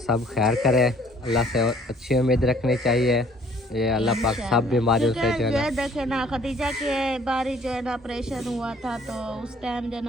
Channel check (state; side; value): normal; both; correlation 0.57